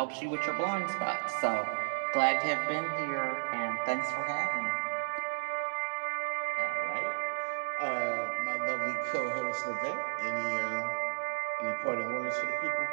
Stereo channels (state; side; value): silent; left; digital silence